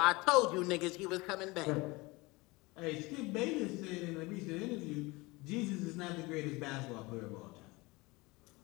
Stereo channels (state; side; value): quieter; right; 23.5 dB